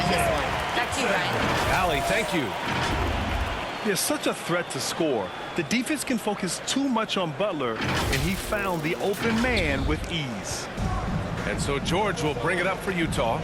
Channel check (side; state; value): both; identical; correlation 1.00